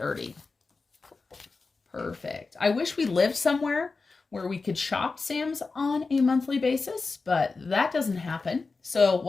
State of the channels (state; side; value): quieter; right; 4.1 dB